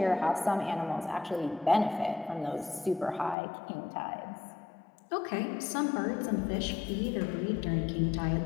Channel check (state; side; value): drops out; right; at 3.4 s